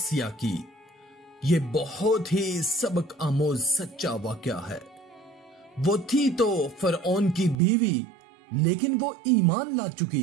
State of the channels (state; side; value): drops out; left; at 7.6 s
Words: की। ये बहुत ही सबक आमोज सच्चा वाकया है। वो थी तो फरऔन की बीवी, लेकिन वो ईमान ला